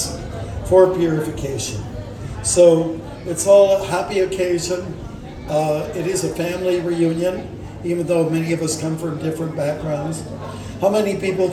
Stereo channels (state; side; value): identical; both; correlation 1.00